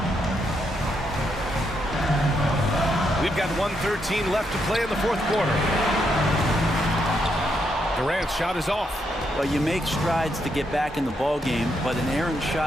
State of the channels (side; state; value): both; normal; correlation 0.79